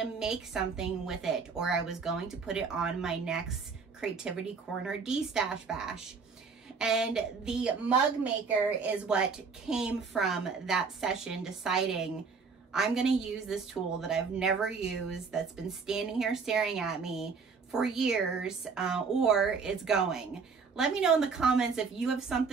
make something with it, or I was going to put it on my next creativity corner D-Stash Bash. And the mug maker is what came from that session, deciding I'm going to use this tool that I've never used, that's been standing here staring at me for years, or it's going. Let me know in the comments if you have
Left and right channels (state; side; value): quieter; left; 5.2 dB